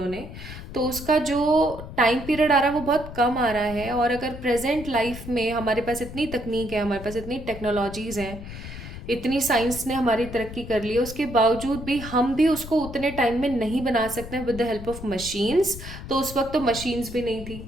तो उसका जो टाइम पीरियड आ रहा है वो बहुत कम आ रहा है। और अगर प्रेजेंट लाइफ में हमारे पास इतनी तकनीक है, हमारे पास इतनी टेक्नोलॉजीज़ हैं, इतनी साइंस ने हमारी तरक्की कर ली है, उसके बावजूद भी हम भी उसको उतने टाइम में नहीं बना सकते हैं with the help of machines. तो उस वक्त तो मशीन्स भी नहीं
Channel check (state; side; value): noise; left; rumble, 12 dB below the sound